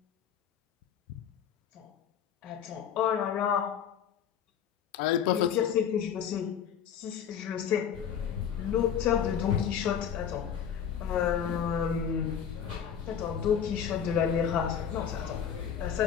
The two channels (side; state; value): right; quieter; 8.3 dB